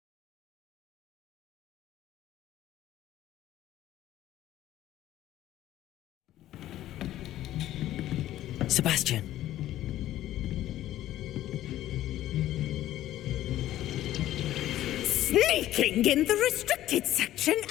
Sebastian. Sneaking in the restricted section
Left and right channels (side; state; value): right; quieter; 13.7 dB